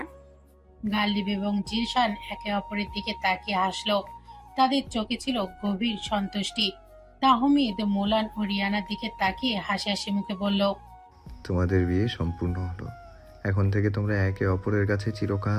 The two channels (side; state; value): both; identical; correlation 1.00